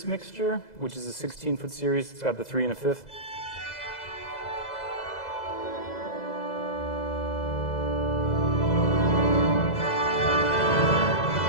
mixture, which is a 16-foot series. It's got the 3 and a 5th.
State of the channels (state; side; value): late; right; 2.0 ms